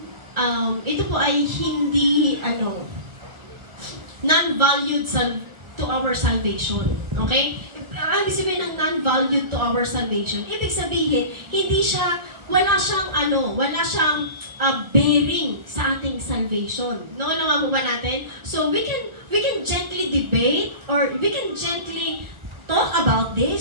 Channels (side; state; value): left; late; 1.5 ms